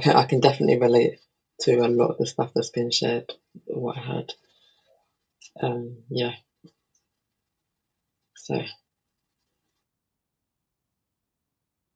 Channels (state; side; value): identical; both; correlation 1.00